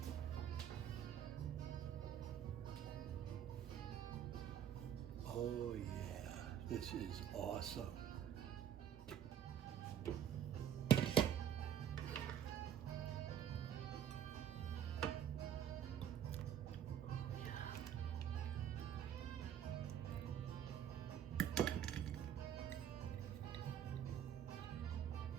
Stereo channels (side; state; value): left; quieter; 9.6 dB